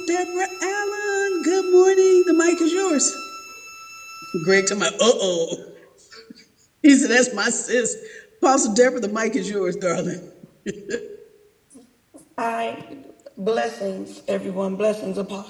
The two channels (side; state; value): both; identical; correlation 1.00